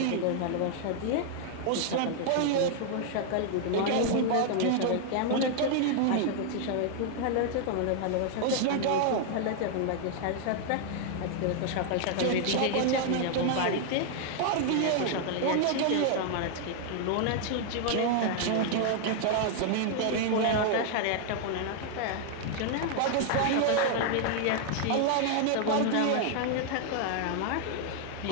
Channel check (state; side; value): different; both; correlation 0.00